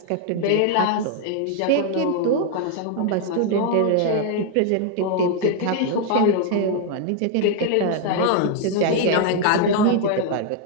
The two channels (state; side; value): different; both; correlation 0.00